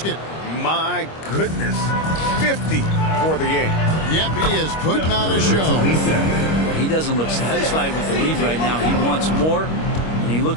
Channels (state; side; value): late; right; 25 ms